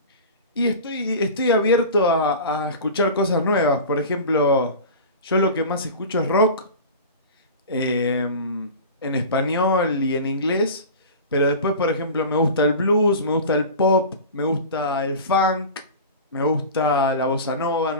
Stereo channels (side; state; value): both; inverted; correlation -0.33